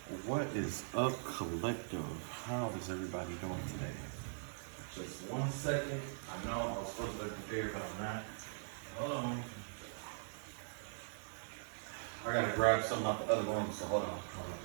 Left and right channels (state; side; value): silent; left; digital silence